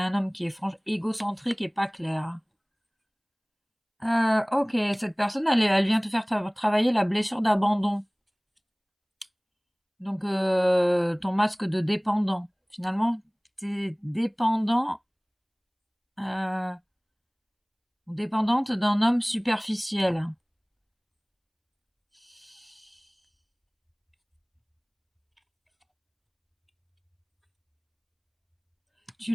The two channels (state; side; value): identical; both; correlation 1.00